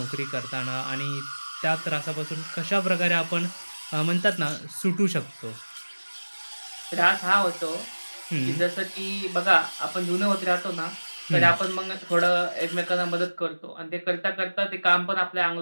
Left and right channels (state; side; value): inverted; both; correlation -1.00